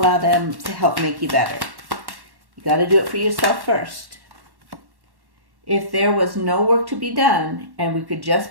them to help make you better. You got to do it for yourself first. If there was no work to be done and we could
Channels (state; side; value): late; left; 1.1 ms